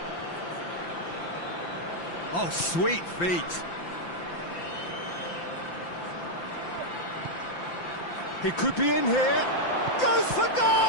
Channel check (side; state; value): right; late; 5.8 ms